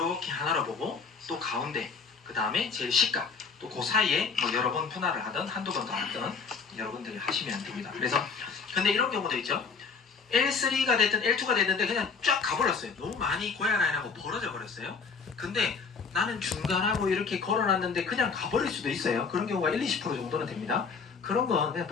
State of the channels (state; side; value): quieter; right; 5.3 dB